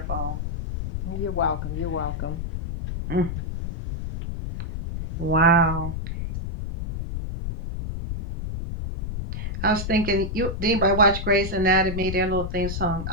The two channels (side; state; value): left; noise; rumble, 5 dB below the sound